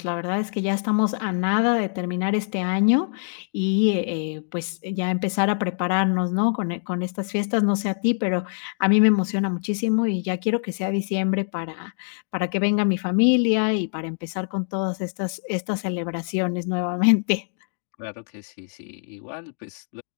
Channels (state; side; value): silent; right; digital silence